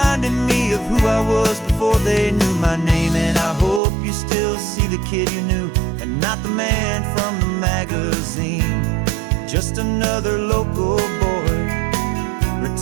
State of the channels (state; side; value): drops out; left; at 3.8 s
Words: me of who I was before they knew my name. And I hope you still see the kid you knew and not the man from the magazine. Just another local boy